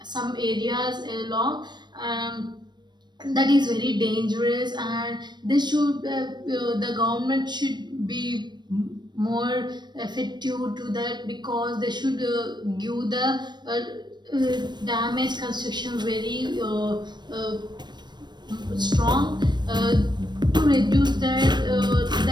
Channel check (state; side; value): late; left; 0.21 ms